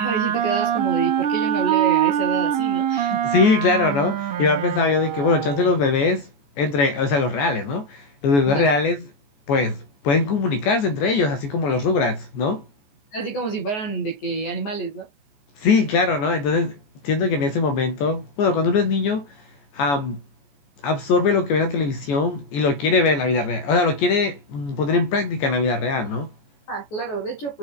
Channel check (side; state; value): right; late; 14 ms